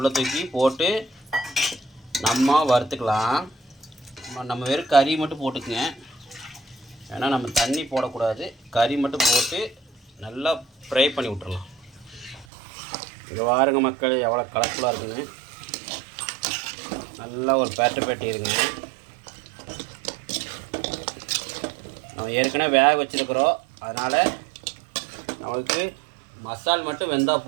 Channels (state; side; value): drops out; left; at 12.5 s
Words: தூக்கி போட்டு நம்ம வறுத்துக்கலாம். நம்ம வெறும் கறி மட்டும் போட்டுக்குங்க, ஏன்னா நம்ம தண்ணி போடக்கூடாது. கறி மட்டும் போட்டு நல்லா ஃப்ரை பண்ணி விட்டுறலாம். இங்கே பாருங்க மக்கள், எவ்வளோ கலர்ஃபுல்லாக இருக்குன்னு. நல்லா ஒரு பேட்டி இருங்க. நம்ம ஏற்கனவே வேக வச்சுருக்குறோம், அதனால் நம்மளுக்கு மசால் மட்டும் வெந்தால்